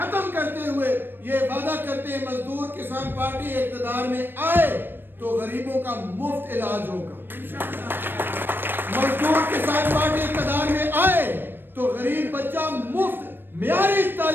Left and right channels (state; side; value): late; left; 0.096 ms